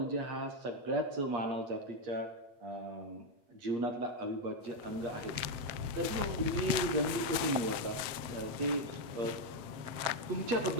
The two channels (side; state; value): left; late; 7.7 ms